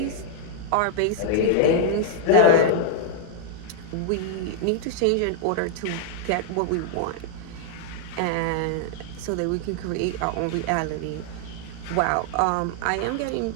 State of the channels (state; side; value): different; both; correlation 0.00